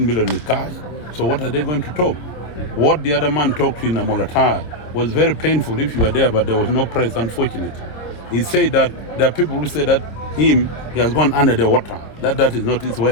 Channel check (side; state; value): right; late; 26 ms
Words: million in cash. So what are they going to talk? What the other man talked in Amolatar was very painful if you were there, but there was no press, unfortunately. He said that there are people who say that he has gone under the water, that is not his